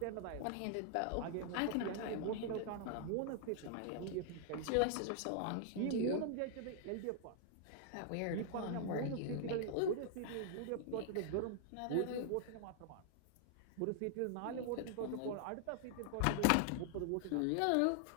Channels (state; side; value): different; both; correlation 0.00